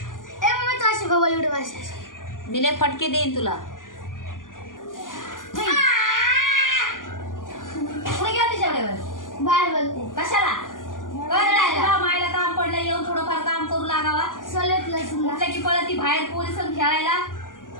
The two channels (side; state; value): right; late; 0.89 ms